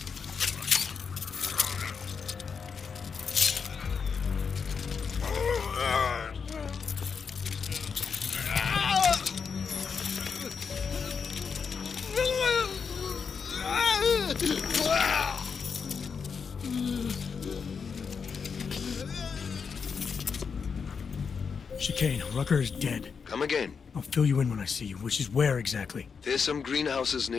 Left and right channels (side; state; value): right; quieter; 5.9 dB